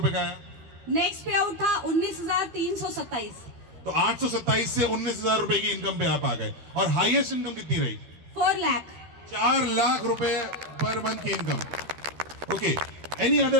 का आया? नेक्स्ट पे आउट था 19,327। तो 827 से 19,000 रुपए की इनकम पे आप आ गए। और हाईएस्ट इनकम कितनी रही? 4 लाख। 4 लाख रुपए पर मंथ की income. Okay, any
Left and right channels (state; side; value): late; left; 12 ms